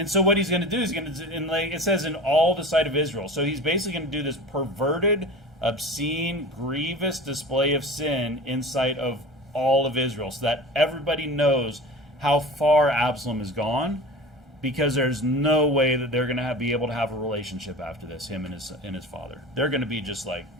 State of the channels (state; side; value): normal; both; correlation 0.36